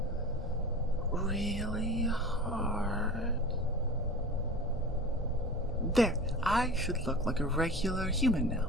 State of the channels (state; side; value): normal; both; correlation 0.35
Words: really hard. There, I should look like a regular human